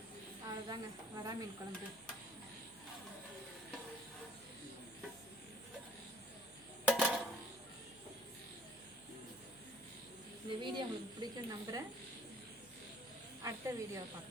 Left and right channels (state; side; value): noise; left; hum, 25 dB below the sound